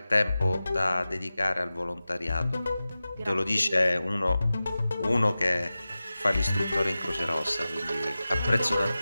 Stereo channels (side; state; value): both; inverted; correlation -0.95